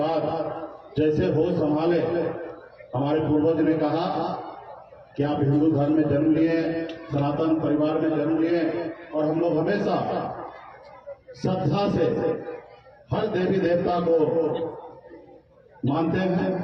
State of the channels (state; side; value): identical; both; correlation 1.00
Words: जैसे होश संभाले हमारे पूर्वज ने कहा कि आप हिंदू धर्म में जन्म लिए, सनातन परिवार में जन्म लिए और हम लोग हमेशा श्रद्धा से हर देवी देवता को मानते हैं।